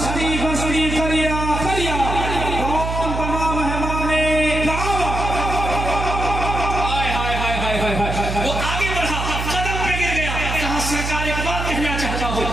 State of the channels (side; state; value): right; noise; hum, 4 dB below the sound